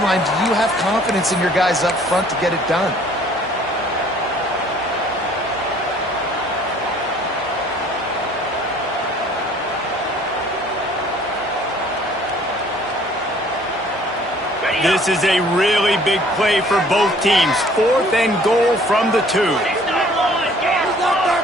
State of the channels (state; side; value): normal; both; correlation 0.56